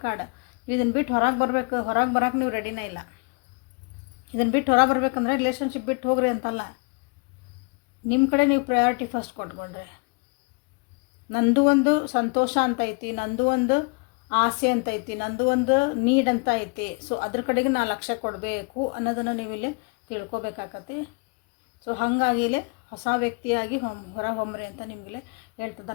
ಕಾರ್ಡ್. ನೀವು ಇದನ್ನು ಬಿಟ್ಟು ಹೊರಗೆ ಬರಬೇಕು, ಹೊರಗೆ ಬರೋಕೆ ನೀವು ರೆಡಿನೇ ಇಲ್ಲ. ಇದನ್ನು ಬಿಟ್ಟು ಹೊರಗೆ ಬರ್ಬೇಕಂದ್ರೆ ರಿಲೇಷನ್ಶಿಪ್ ಬಿಟ್ಟು ಹೋಗ್ರಿ ಅಂತಲ್ಲ, ನಿಮ್ಮ ಕಡೆ ನೀವು ಪ್ರಯಾರಿಟಿ ಫಸ್ಟ್ ಕೊಟ್ಕೊಳ್ರಿ. ನಂದು ಒಂದು ಸಂತೋಷ ಅಂತ ಐತಿ, ನಂದು ಒಂದು ಆಸೆ ಅಂತ ಐತಿ, ನಂದು ಒಂದು ನೀಡ್ ಅಂತ ಐತಿ. ಸೊ ಅದ್ರ ಕಡೆಗೆ ನಾನು ಲಕ್ಷ್ಯ ಕೊಡಬೇಕು ಅನ್ನೋದನ್ನು ನೀವು ಇಲ್ಲಿ ತಿಳ್ಕೊಬೇಕಾಗತ್ತೆ. ಸೊ ಹಾಗಾಗಿ ಇಲ್ಲಿ ಹೊಸ ವ್ಯಕ್ತಿಯಾಗಿ ಹೊರ ಹೊಮ್ರಿ ಅಂತ ನಿಮಗಿಲ್ಲಿ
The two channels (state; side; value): quieter; right; 33.0 dB